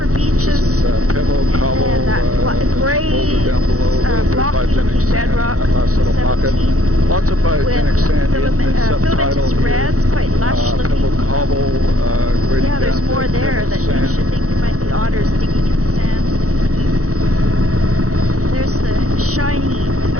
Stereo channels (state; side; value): late; left; 0.65 ms